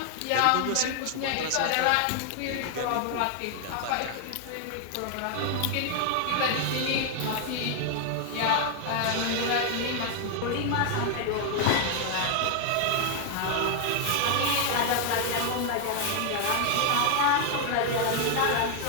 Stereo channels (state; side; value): different; both; correlation 0.00